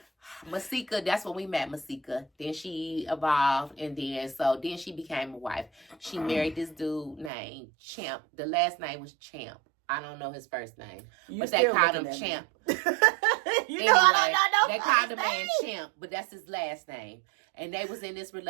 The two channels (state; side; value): drops out; left; at 7.3 s